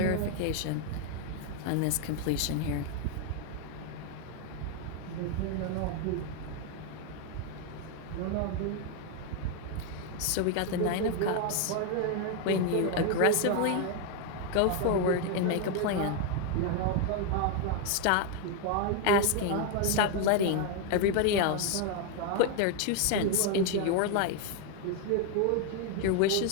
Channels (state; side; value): different; both; correlation 0.01